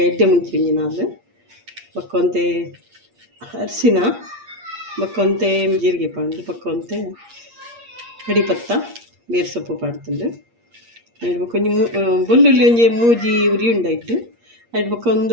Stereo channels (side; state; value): left; late; 8.6 ms